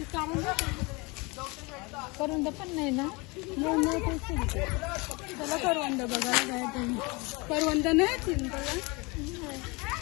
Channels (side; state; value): right; quieter; 26.9 dB